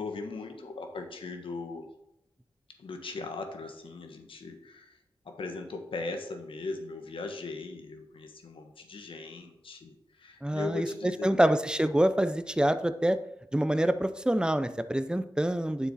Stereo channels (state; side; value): normal; both; correlation 0.93